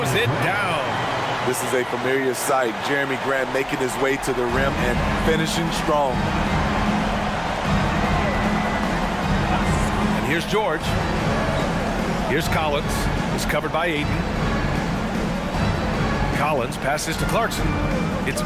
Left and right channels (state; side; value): identical; both; correlation 1.00